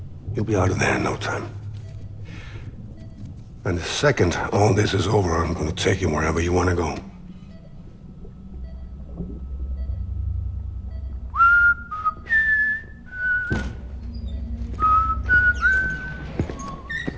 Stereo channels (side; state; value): both; identical; correlation 1.00